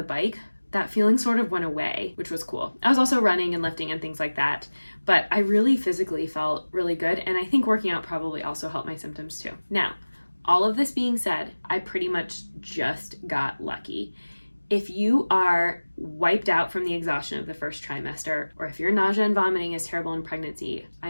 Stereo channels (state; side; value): inverted; both; correlation -1.00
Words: bike, that feeling sort of went away, which was cool. I was also running and lifting and things like that, but I really physically felt really good. And I think working out probably also helped my symptoms too. Now, all of this being said, I pretty much just got lucky. If you are wiped out from the exhaustion of the first trimester, or if your nausea and vomiting is terrible in pregnancy, I